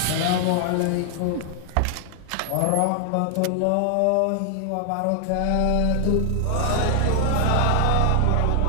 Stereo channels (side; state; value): both; different; correlation 0.00